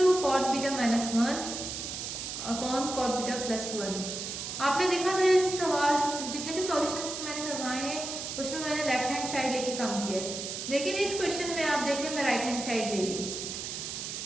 cot beta minus 1 upon cot beta plus 1। आपने देखा था सवाल, जितने भी सॉल्यूशंस मैंने करवाए हैं उसमें मैंने लेफ्ट हैंड साइड लेके काम किया है, लेकिन इस क्वेश्चन में आप देखें मैं राइट हैंड साइड ले रही हूँ।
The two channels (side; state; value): right; noise; hiss, 6 dB below the sound